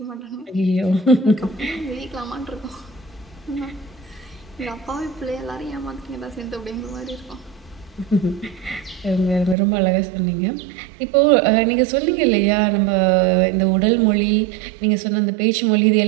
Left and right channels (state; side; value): drops out; left; at 9.6 s